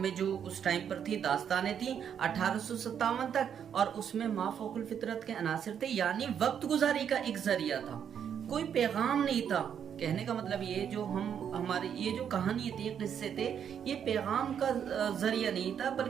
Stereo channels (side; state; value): left; quieter; 8.3 dB